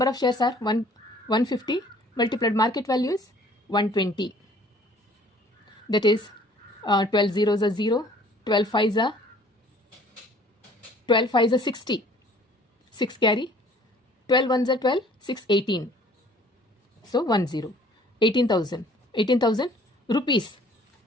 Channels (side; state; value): both; normal; correlation 0.54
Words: of shares are? 150 multiplied market value is 120. That is 12 zeros are 0, 12 5s are 60, 6 carry, 12 1s are 12, 6 18. So 10, 18,000 rupees.